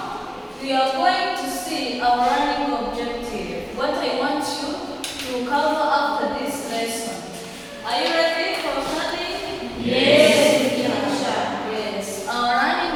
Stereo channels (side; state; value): both; identical; correlation 1.00